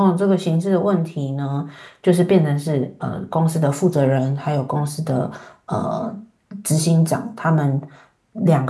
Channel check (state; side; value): identical; both; correlation 1.00